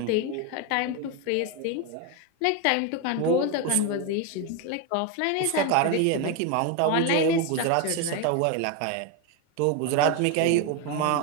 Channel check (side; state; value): both; different; correlation 0.02